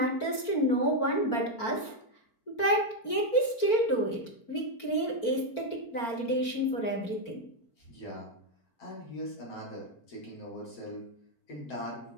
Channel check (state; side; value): late; right; 4.4 ms